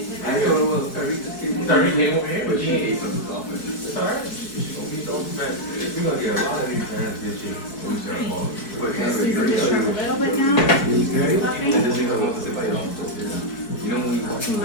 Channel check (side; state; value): right; late; 4.6 ms